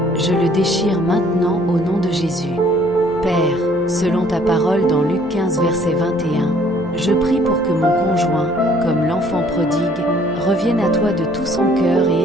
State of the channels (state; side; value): noise; left; hum, 20 dB below the sound